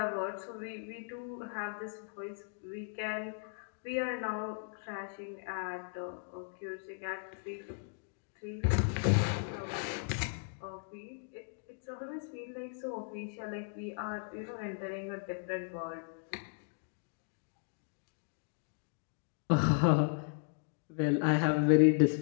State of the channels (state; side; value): silent; right; digital silence